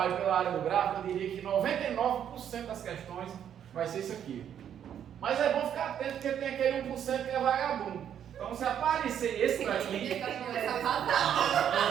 pela área do gráfico, eu diria que 99% das questões vai ser isso aqui. Mas é bom ficar atento porque tem aquele 1% que é vagabundo. Então se aparecer esse daqui,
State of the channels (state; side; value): quieter; left; 9.4 dB